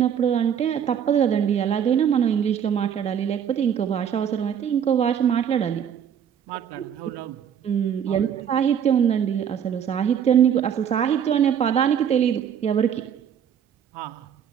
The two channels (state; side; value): quieter; left; 8.6 dB